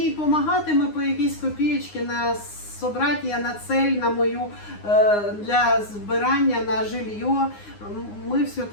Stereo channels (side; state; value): right; late; 9.7 ms